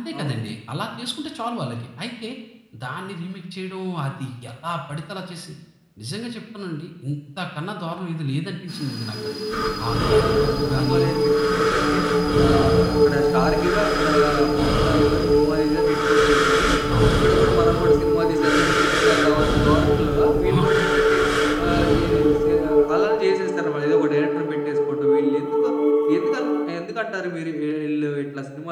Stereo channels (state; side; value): identical; both; correlation 1.00